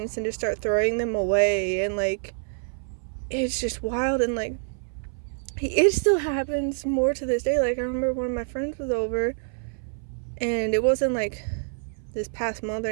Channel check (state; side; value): silent; left; 61 dB below the other